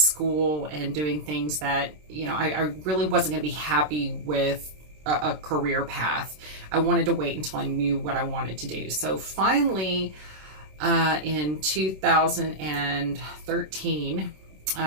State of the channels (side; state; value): left; late; 26 ms